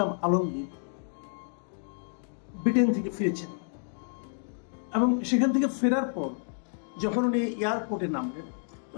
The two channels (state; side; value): silent; right; 58 dB below the other